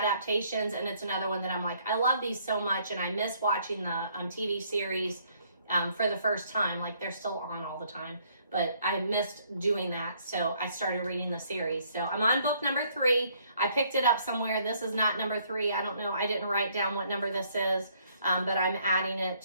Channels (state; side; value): inverted; both; correlation -0.65